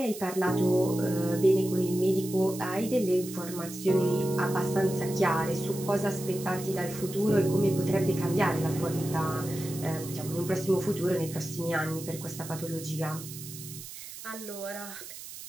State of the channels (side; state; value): right; noise; hiss, 12 dB below the sound